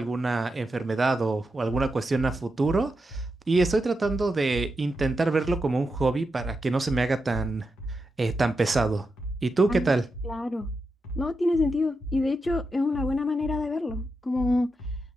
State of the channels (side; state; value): both; normal; correlation 0.87